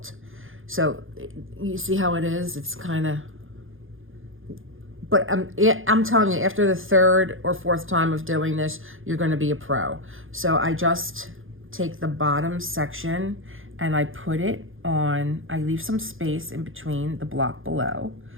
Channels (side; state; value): left; late; 0.59 ms